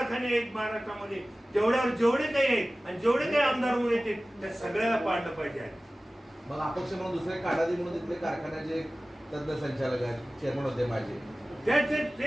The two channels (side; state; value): both; normal; correlation 0.97